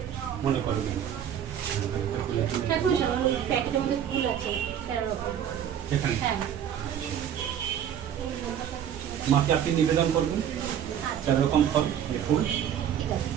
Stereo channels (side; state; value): left; quieter; 9.4 dB